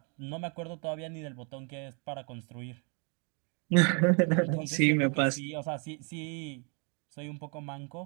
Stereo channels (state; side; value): quieter; left; 36.5 dB